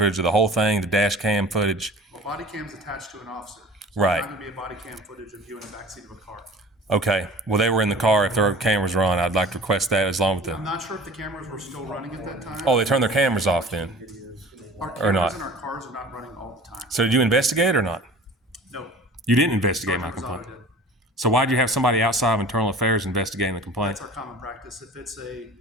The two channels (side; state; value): both; normal; correlation 0.43